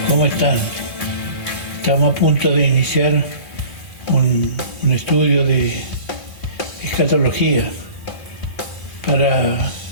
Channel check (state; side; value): late; right; 2.8 ms